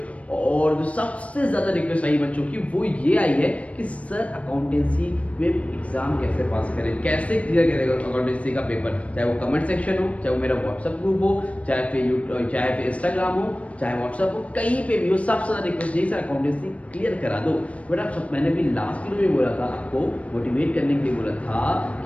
और जो सबसे ज़्यादा रिक्वेस्ट आई बच्चों की वो ये आई है कि सर अकाउंटेंसी में एग्ज़ाम कैसे पास करें, कैसे क्लियर करेगा अकाउंटेंसी का पेपर। चाहे वो कमेंट सेक्शन हो, चाहे वो मेरा व्हाट्सअप ग्रुप हो, चाहे फिर इंस्टाग्राम हो, चाहे व्हाट्सअप हो, कहीं पे भी हो, सबसे ज़्यादा रिक्वेस्ट यही सर अकाउंटेंसी क्लियर करा दो। बट आप सब, मैंने भी लास्ट वीडियो में बोला था, आपको मोटिवेट करने के लिए बोला था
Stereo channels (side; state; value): right; late; 0.064 ms